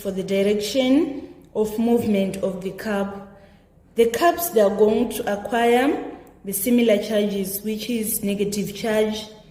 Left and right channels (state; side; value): identical; both; correlation 1.00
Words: the direction of movement of the cup. The cups, they are going to acquire the similar charges, which is negative charge.